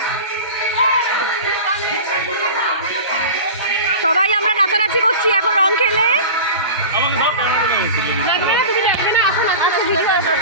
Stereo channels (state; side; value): inverted; both; correlation -0.33